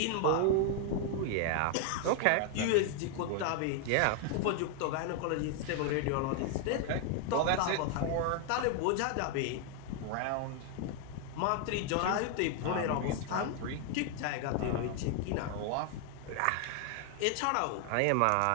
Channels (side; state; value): both; different; correlation 0.00